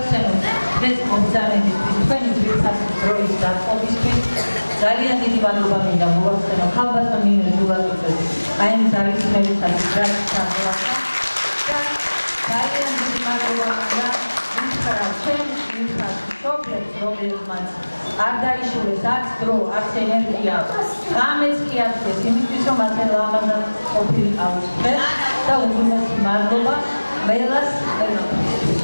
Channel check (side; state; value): both; inverted; correlation -1.00